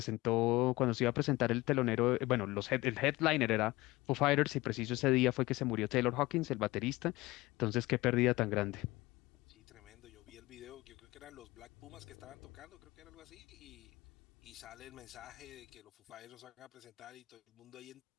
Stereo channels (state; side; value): quieter; right; 20.0 dB